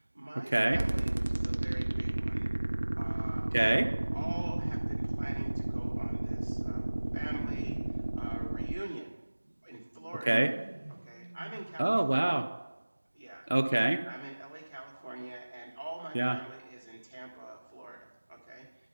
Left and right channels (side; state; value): both; inverted; correlation -1.00